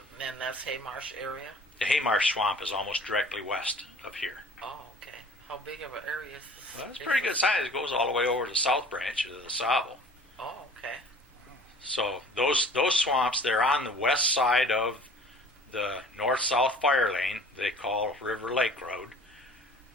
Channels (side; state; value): both; normal; correlation 0.48